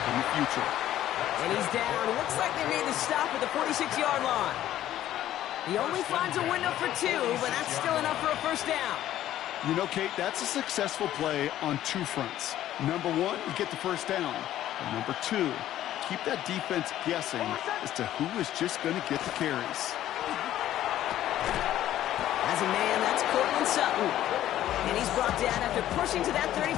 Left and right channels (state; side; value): quieter; right; 12.8 dB